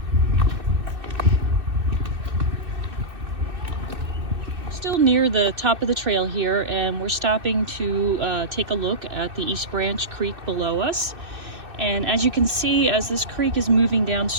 Still near the top of the trail here, and we're stopping to take a look at the East Branch Creek below us. And as you can see, as this creek is moving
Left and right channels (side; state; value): left; late; 2.6 ms